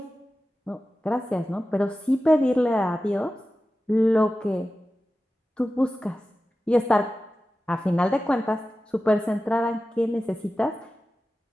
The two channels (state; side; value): normal; both; correlation 0.94